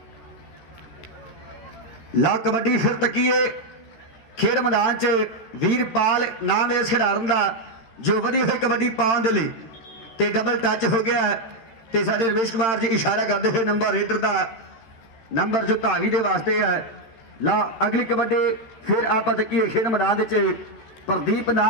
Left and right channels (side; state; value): right; late; 13 ms